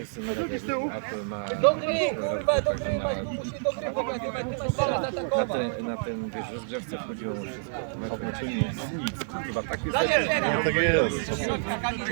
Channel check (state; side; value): silent; left; 59 dB below the other